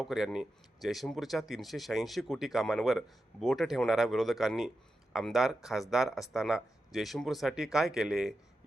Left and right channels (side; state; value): both; normal; correlation 0.89